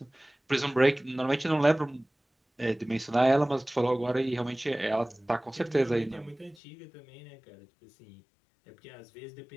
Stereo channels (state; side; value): drops out; right; at 6.6 s